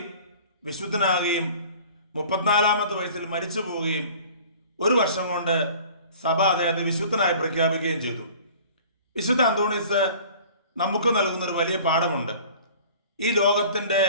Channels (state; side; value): inverted; both; correlation -0.47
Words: വിശുദ്ധനാകുകയും 34ാമത്തെ വയസ്സിൽ മരിച്ചു പോവുകയും 1 വർഷം കൊണ്ട് സഭ അദ്ദേഹത്തെ വിശുദ്ധനായി പ്രഖ്യാപിക്കുകയും ചെയ്തു. വിശുദ്ധ അന്തോണീസ് നമുക്ക് നൽകുന്ന ഒരു വലിയ പാഠമുണ്ട്. ഈ ലോകത്തിന്റെ